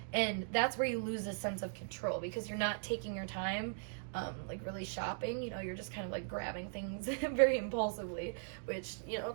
and that's where you lose a sense of control, because you're not taking your time, like really shopping. You know, you're just kind of like grabbing things very impulsively, which, you know,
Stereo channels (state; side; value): silent; left; digital silence